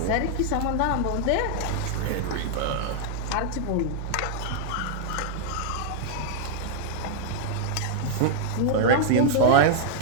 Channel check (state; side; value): different; both; correlation -0.01